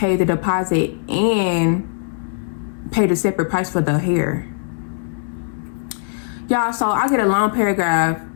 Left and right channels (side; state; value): right; silent; 66 dB below the other